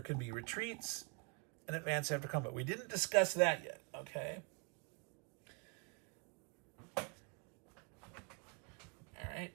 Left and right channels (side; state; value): left; quieter; 34.0 dB